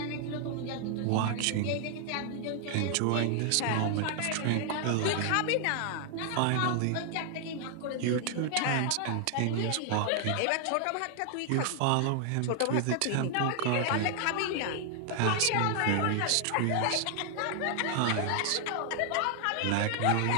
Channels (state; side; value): different; both; correlation 0.00